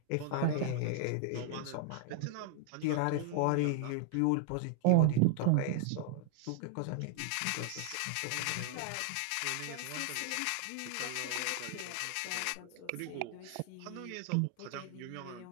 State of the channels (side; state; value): both; different; correlation 0.00